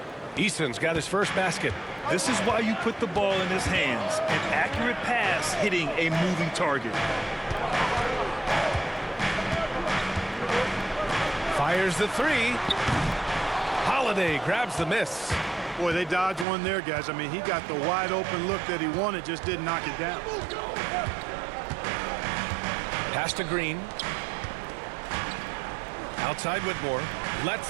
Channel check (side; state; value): left; drops out; at 16.4 s